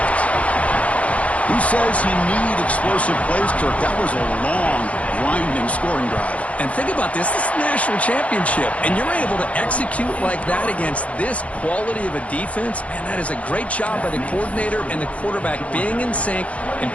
Who says you need explosive plays, Kirk? That was a long, grinding scoring drive. And think about this. This is a national championship, and you're able to execute like that against this quality of a defense. Man, that is a great job by the coordinator and the quarterback being in sync and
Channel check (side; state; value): right; late; 0.065 ms